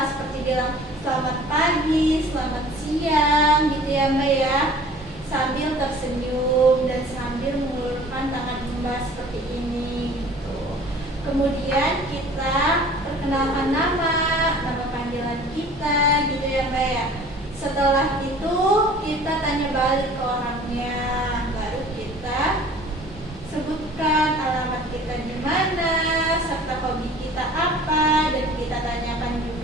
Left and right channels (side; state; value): both; normal; correlation 0.47